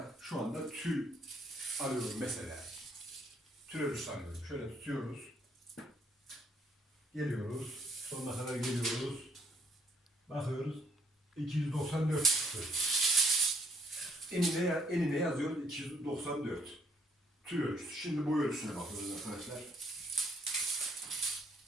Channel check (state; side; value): normal; both; correlation 0.66